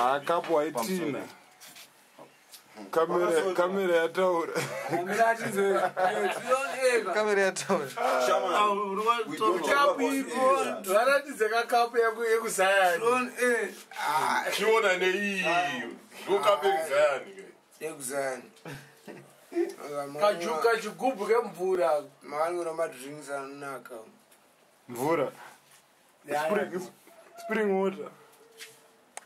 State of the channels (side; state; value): both; identical; correlation 1.00